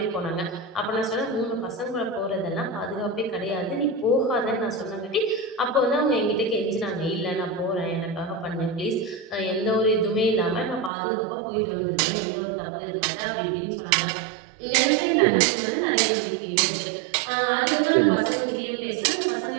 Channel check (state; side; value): drops out; left; at 10.9 s